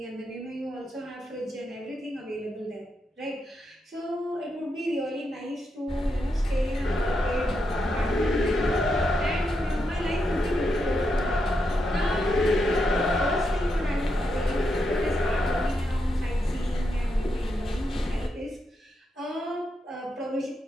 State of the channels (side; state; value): both; normal; correlation 0.83